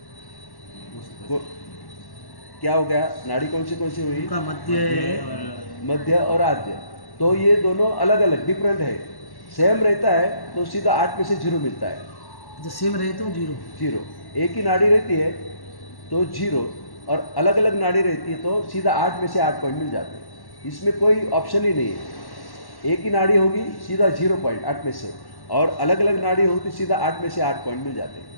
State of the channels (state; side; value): late; right; 1.1 ms